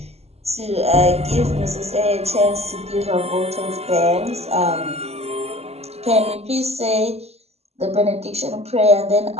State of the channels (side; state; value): left; late; 0.30 ms